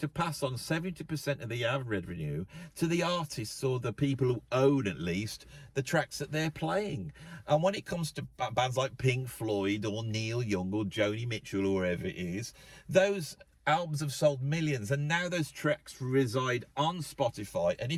pass on 70% of the ad revenue to the artists or the people who own, at least, the tracks that they're playing. And when it comes to bands like Pink Floyd or Neil Young or Joni Mitchell or whoever it is, those albums have sold millions, and now those tracks reside on Spotify. And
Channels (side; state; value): both; identical; correlation 1.00